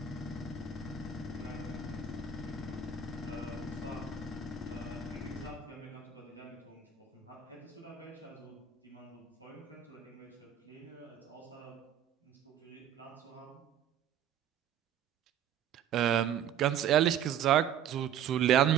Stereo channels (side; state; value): left; quieter; 8.4 dB